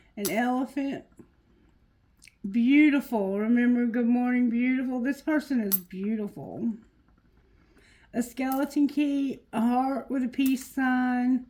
An elephant. Beautiful. Remember, good morning, beautiful. This person is beautiful. A skeleton key. A heart with a peace sign.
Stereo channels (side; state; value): both; identical; correlation 1.00